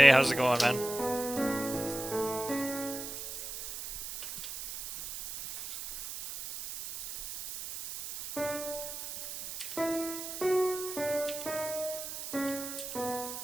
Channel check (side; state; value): right; noise; hiss, 7 dB below the sound